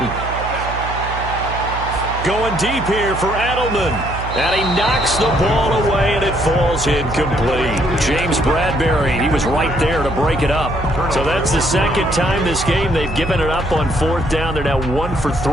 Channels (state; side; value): noise; right; hum, 8 dB below the sound